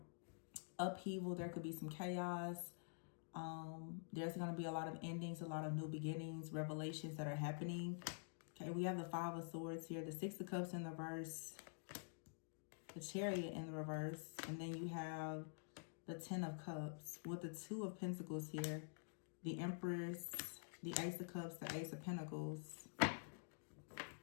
upheaval. There could be some chaos. There's going to be a lot of endings, a lot of new beginnings, revelations that are happening. Okay, we have the Five of Swords here, the Six of Cups in the reverse, the Chariot in the reverse, and then you have the Ten of Cups with the Two of Pentacles here, the Empress, the Ace of Cups, the Ace of Pentacles.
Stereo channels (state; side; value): silent; right; digital silence